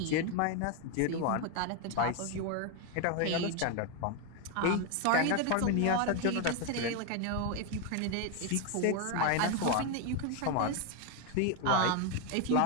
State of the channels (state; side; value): different; both; correlation 0.01